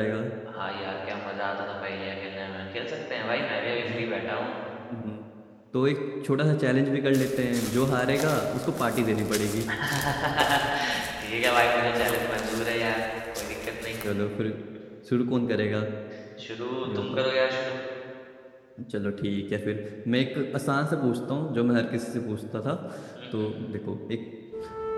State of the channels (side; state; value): both; identical; correlation 1.00